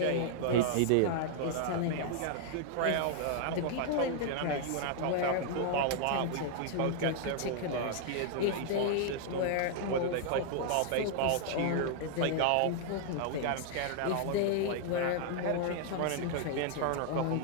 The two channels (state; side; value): different; both; correlation -0.01